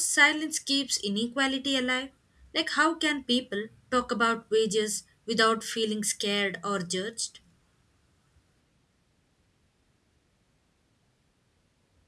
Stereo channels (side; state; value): both; identical; correlation 1.00